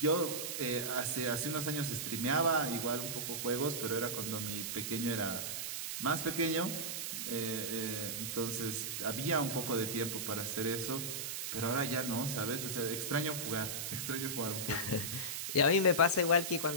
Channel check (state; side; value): noise; right; hiss, 3 dB below the sound